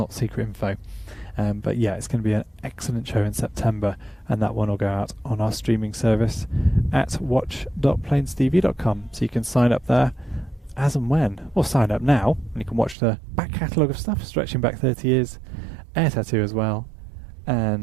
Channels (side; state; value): left; drops out; at 13.0 s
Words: secret info. But yeah, it's going to be an excellent show in September, and that one will go out on our streaming service at watch.plainstv.com. So you can sign up there as and when, or sign up now, and you can watch the back catalogue of stuff stretching back 30 years, air tattoo as well,